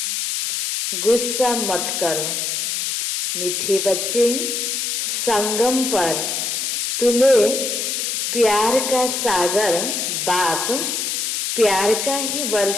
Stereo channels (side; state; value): left; noise; hiss, 1 dB below the sound